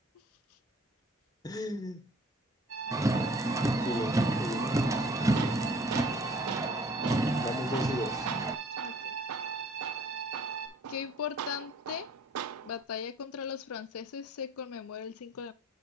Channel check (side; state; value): both; normal; correlation 0.54